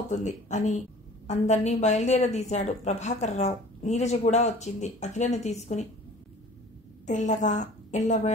అని అందర్నీ బయలుదేరదీశాడు ప్రభాకర్ రావు. నీరజ కూడా వచ్చింది అఖిలను తీసుకుని. తెల్లగా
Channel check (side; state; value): both; normal; correlation 0.47